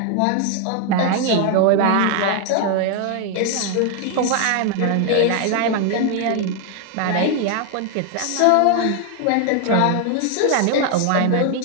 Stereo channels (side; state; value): both; different; correlation 0.00